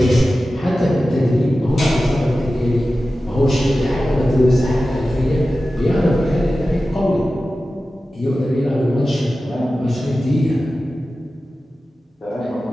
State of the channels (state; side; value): normal; both; correlation 0.94